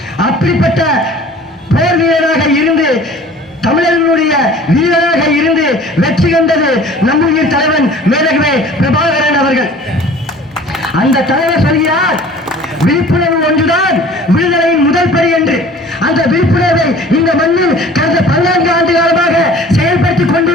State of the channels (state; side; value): normal; both; correlation 0.47